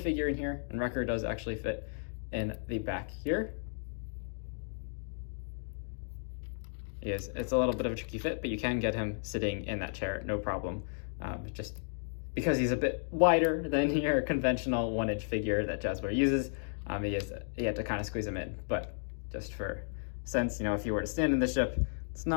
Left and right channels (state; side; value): silent; right; digital silence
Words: in here, and Wrecker does actually fit in the back here. It's a little bit of a tricky fit, but you can get him sitting in that chair, no problem. Just because he's a bit wider than your conventional 1-inch figure that Jazwares uses, you have to kind of squeeze him in. But just for sense, if you were to stand in the ship, it's